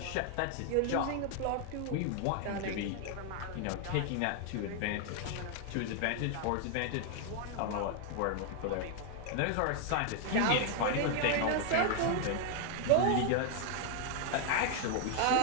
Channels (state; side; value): different; both; correlation 0.00